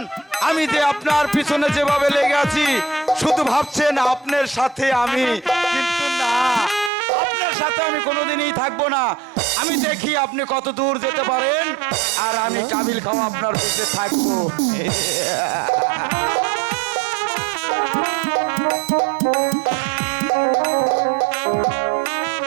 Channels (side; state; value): left; drops out; at 6.9 s